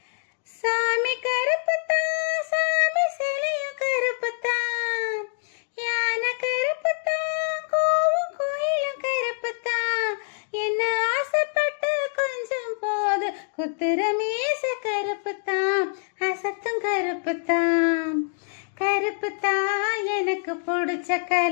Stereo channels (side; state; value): right; silent; digital silence